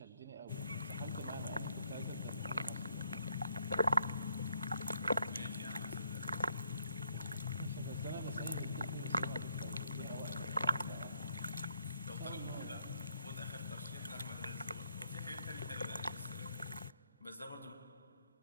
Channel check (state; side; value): inverted; both; correlation -0.73